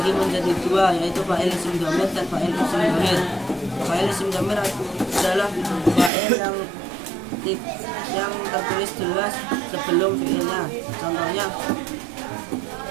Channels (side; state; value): left; drops out; at 6.1 s